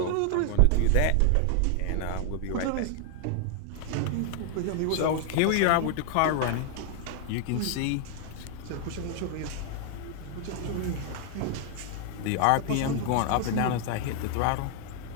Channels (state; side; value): different; both; correlation 0.00